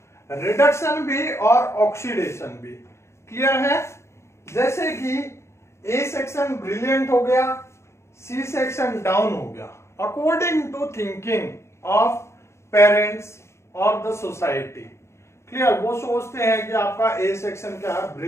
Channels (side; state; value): right; late; 0.13 ms